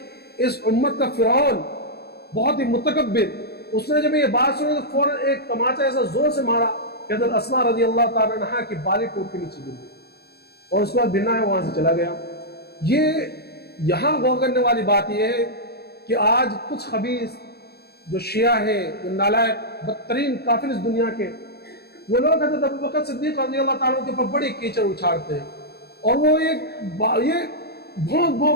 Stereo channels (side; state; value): right; late; 0.47 ms